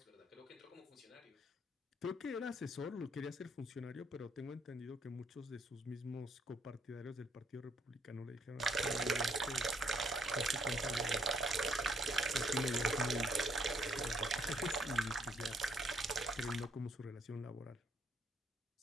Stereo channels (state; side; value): normal; both; correlation 0.70